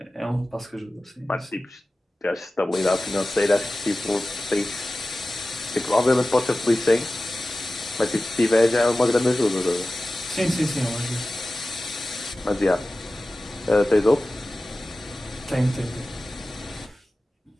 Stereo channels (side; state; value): both; normal; correlation 0.96